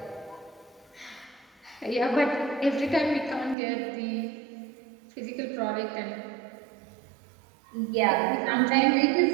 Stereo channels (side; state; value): left; drops out; at 3.6 s